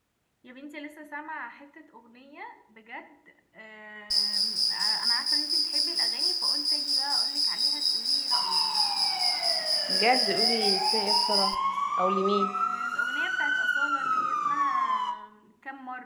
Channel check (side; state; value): both; identical; correlation 1.00